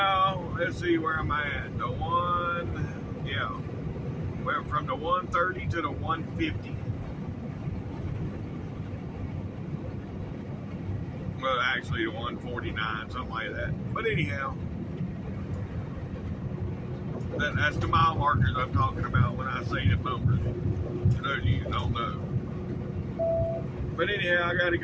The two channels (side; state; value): both; identical; correlation 1.00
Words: let's see where I'm at. Went from the 130 to the 150. Well, actually the 149, something like that. But anyhow, that's the mile markers I'm talking about when I say the numbers. For those of you who don't know. But anyhow, I got to